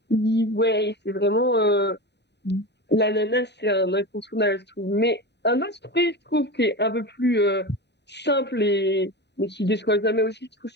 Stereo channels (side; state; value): right; late; 0.50 ms